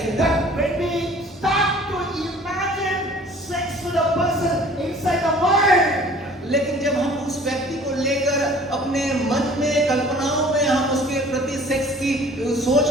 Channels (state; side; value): normal; both; correlation 0.50